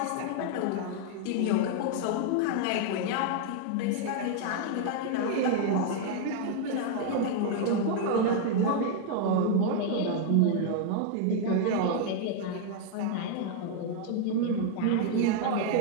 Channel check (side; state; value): both; different; correlation 0.00